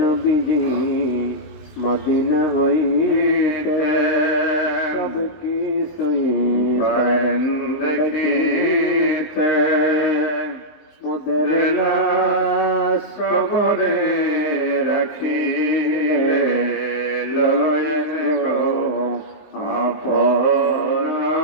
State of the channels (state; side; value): late; right; 19 ms